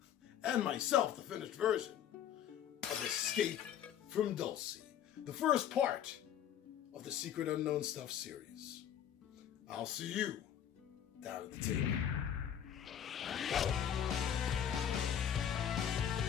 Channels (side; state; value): right; quieter; 9.7 dB